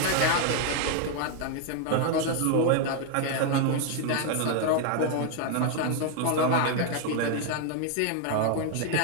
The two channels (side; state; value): both; different; correlation 0.00